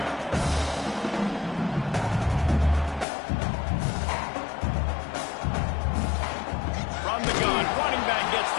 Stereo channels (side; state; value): right; drops out; at 3.1 s